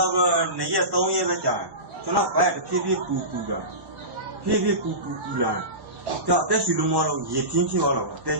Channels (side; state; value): left; late; 1.1 ms